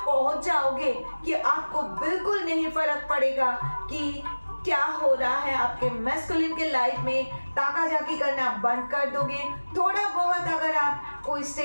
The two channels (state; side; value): inverted; both; correlation -1.00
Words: पहुंच जाओगे कि आपको बिल्कुल नहीं फर्क पड़ेगा कि क्या हो रहा है आपके मैस्कुलिन के लाइफ में, ताका झाकी करना बंद कर दोगे। थोड़ा बहुत अगर आप कोई